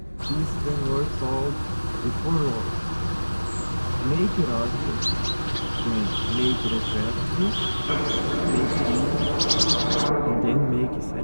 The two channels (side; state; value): both; inverted; correlation -1.00